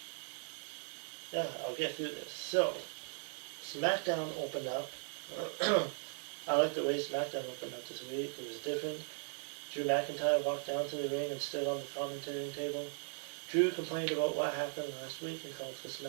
through this. So, SmackDown opened up. I like the way SmackDown opened up this week. It was different. Drew McIntyre walked down to the ring and stood on the commentating table. Drew complained about what happened last week and called for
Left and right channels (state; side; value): silent; left; 52 dB below the other